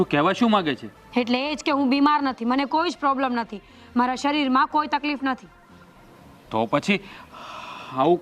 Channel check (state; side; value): identical; both; correlation 1.00